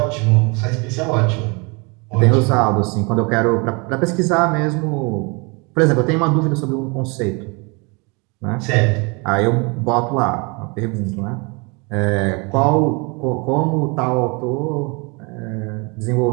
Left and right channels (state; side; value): quieter; left; 30.2 dB